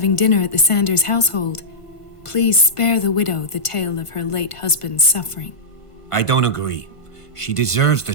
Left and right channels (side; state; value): right; late; 1.5 ms